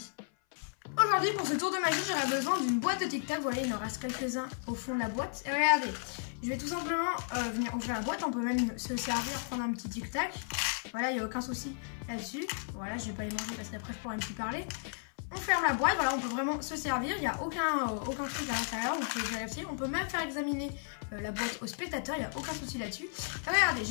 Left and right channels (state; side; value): silent; right; 55 dB below the other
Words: Aujourd'hui pour ce tour de magie j'aurai besoin d'une boîte de tic-tac. Vous voyez, il en reste quelques-uns au fond de la boîte. Et regardez, je vais tout simplement venir ouvrir la boîte. On peut même se servir, prendre un petit tic-tac. Voilà, il n'y a aucun souci là-dessus. Voilà, je vais pas les manger parce qu'après je pourrais plus parler. On ferme la boîte, voilà, on peut vraiment se servir, il n'y a aucun truc à l'intérieur, vous pouvez vérifier. On peut même faire examiner la boîte au spectateur, il n'y a aucun souci là-dessus. Regardez,